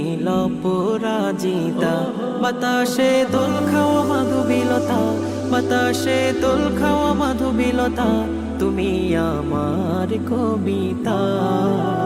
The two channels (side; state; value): both; identical; correlation 1.00